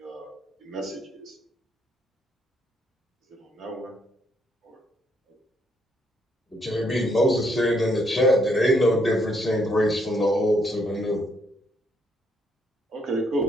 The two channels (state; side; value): normal; both; correlation 0.72